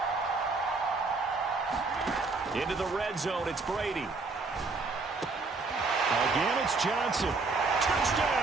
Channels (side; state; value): left; quieter; 3.9 dB